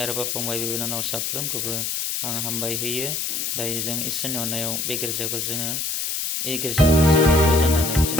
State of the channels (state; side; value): noise; left; hiss, 2 dB below the sound